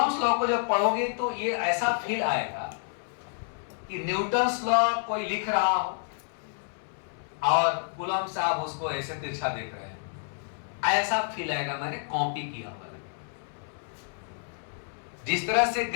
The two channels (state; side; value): silent; right; 58 dB below the other